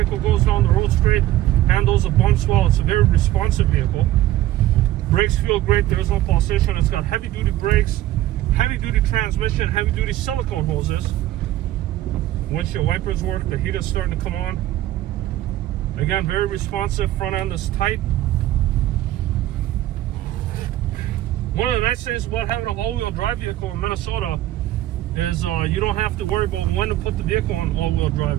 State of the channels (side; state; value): left; quieter; 14.5 dB